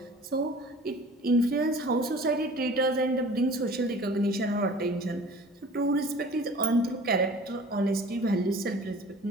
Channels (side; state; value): both; normal; correlation 0.45